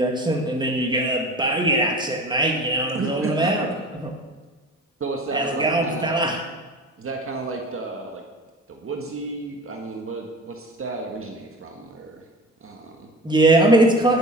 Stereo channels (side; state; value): both; normal; correlation 0.36